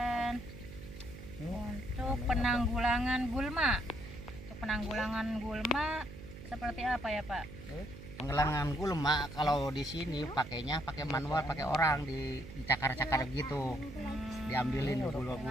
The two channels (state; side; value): noise; right; hum, 13 dB below the sound